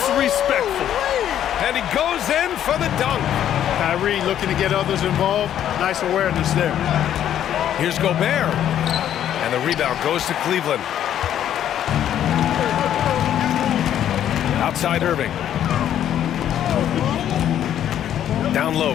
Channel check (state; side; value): quieter; right; 10.6 dB